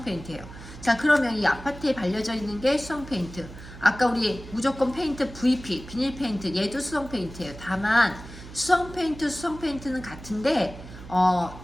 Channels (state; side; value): noise; right; hum, 15 dB below the sound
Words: 페인트예요. 자, 그러면 이 아파트에 발려져 있는 게 수성 페인트. 아까 우리 무조건 페인트 VP, 비닐 페인트, 얘도 수성 페인트예요. 다만 수성 페인트는 같은데